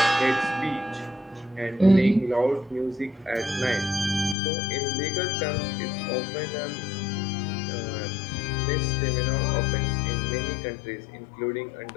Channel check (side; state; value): right; drops out; at 4.4 s